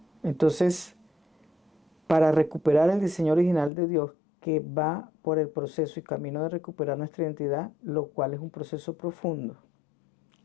Entonces, para recuperar el diseño original de Dios que va por el proceso y camino de recuperar nuestra identidad, lo cual es un proceso profundo,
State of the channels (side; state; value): right; drops out; at 3.7 s